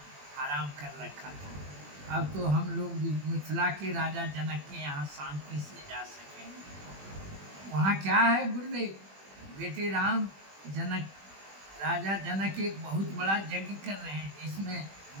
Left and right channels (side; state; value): left; late; 21 ms